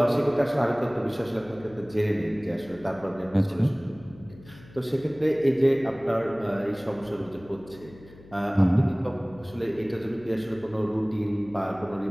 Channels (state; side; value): noise; left; hum, 21 dB below the sound